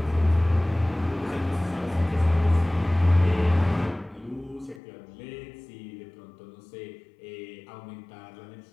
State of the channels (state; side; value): drops out; right; at 4.8 s